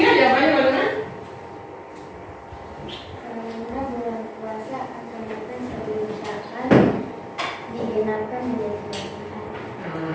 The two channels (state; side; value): identical; both; correlation 1.00